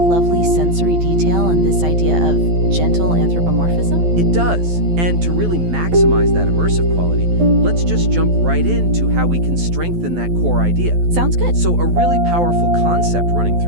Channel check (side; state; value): left; late; 12 ms